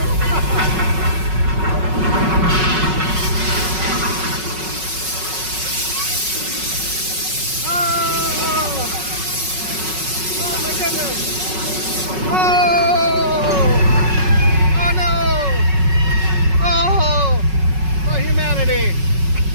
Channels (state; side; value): late; left; 5.4 ms